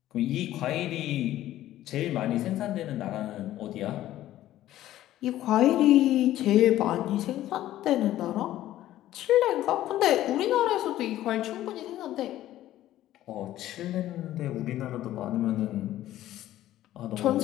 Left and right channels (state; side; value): quieter; right; 13.8 dB